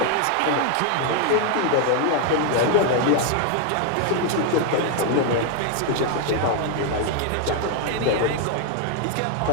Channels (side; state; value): both; different; correlation 0.01